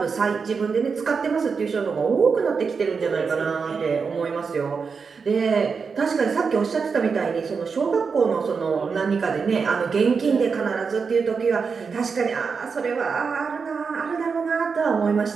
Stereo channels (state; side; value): quieter; left; 5.4 dB